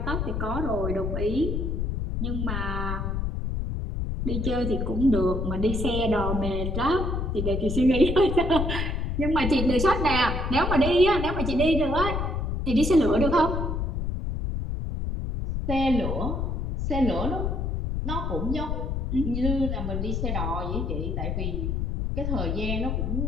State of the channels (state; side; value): noise; left; rumble, 1 dB below the sound